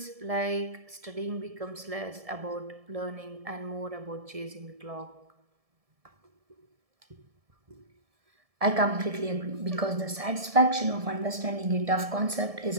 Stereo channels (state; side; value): late; left; 1.7 ms